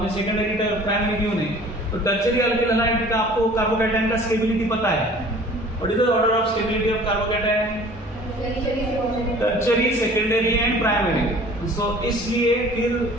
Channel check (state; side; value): normal; both; correlation 0.48